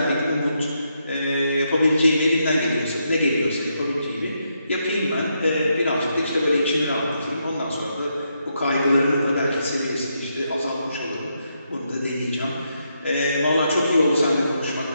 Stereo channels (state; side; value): inverted; both; correlation -0.80